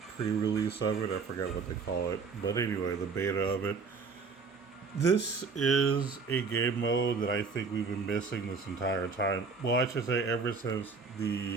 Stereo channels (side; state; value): left; quieter; 4.9 dB